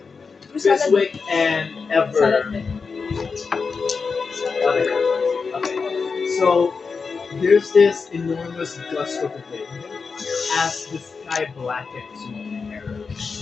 Fiswick, and Ever. Okay. So there's this enormous gust of wind as the sky blackens with terror.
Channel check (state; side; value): quieter; right; 5.0 dB